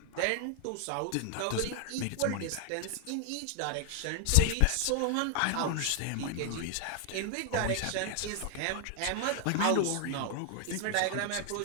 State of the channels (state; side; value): different; both; correlation 0.00